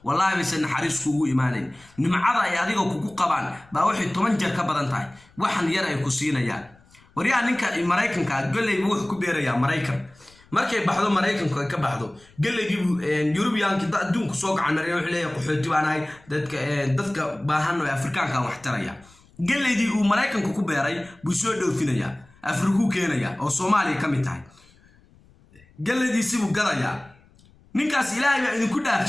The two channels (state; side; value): noise; left; rumble, 28 dB below the sound